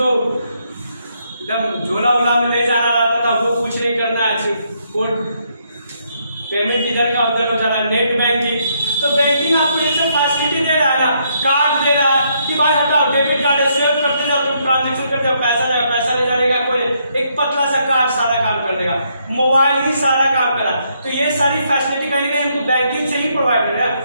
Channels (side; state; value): both; inverted; correlation -0.74